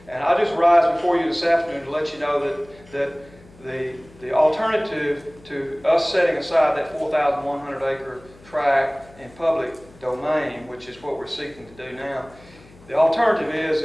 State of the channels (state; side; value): noise; left; hum, 24 dB below the sound